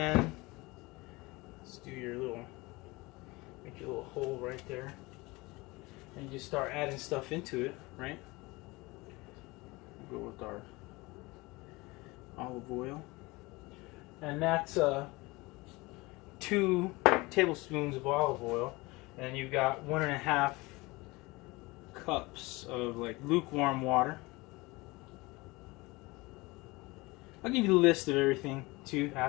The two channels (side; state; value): right; quieter; 23.0 dB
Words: let's do your little, make your little hole right there, and you just start adding stuff into it, right? We'll go with our olive oil, and that's 2 tablespoons of olive oil, and you've got 1.5 cups of like lukewarm water. I'll give you the list of everything too